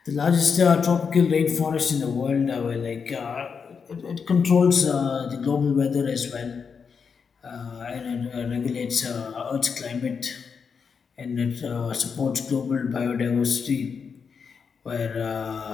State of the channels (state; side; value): quieter; right; 6.0 dB